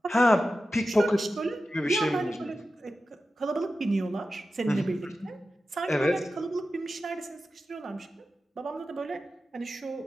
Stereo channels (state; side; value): normal; both; correlation 0.93